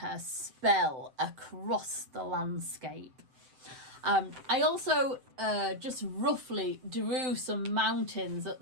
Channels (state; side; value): late; left; 7.7 ms